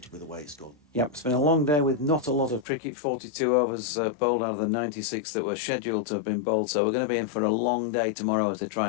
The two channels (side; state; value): right; drops out; at 2.7 s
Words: with the way it's gone. Yep, it's been a long day with not a lot of cricket. 42 overs bowled out of the 96 that were scheduled to have been bowled, so we're going to be in for a long day tomorrow as they